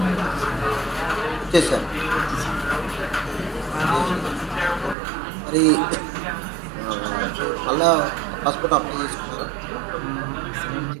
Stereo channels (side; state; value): left; drops out; at 5.0 s